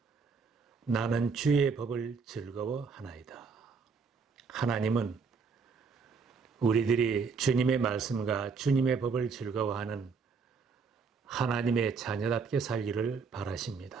나는 주의 법을 즐거워하나이다. 하나님은 우리들이 주님의 말씀과 주님의 법을 즐거워하는 하나님의 자녀답게 살기를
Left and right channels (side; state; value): left; quieter; 5.1 dB